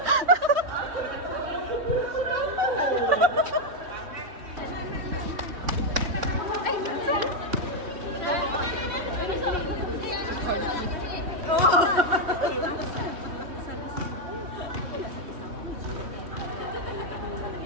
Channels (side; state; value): left; late; 3.3 ms